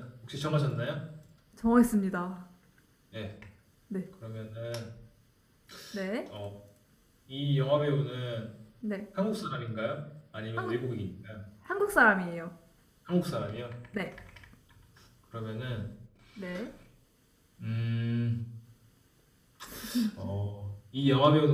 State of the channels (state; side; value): identical; both; correlation 1.00